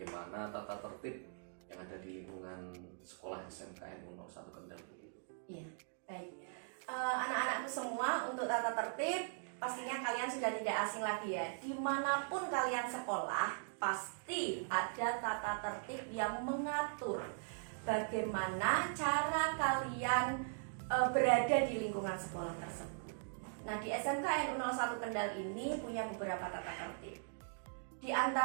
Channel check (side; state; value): left; silent; digital silence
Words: tata tertib yang ada di lingkungan sekolah SMKN 01 Kendal begitu. Iya, baik. Anak-anakku semua, untuk tata tertib pastinya kalian sudah tidak asing lagi ya. Dimanapun kalian sekolah, pasti ada tata tertib yang mengatur bagaimana cara kalian berada di lingkungan sekolah tersebut. Nah, di SMKN 01 Kendal ini punya beberapa tata tertib. Di